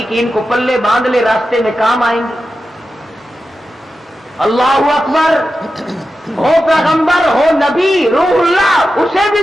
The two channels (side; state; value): both; normal; correlation 0.91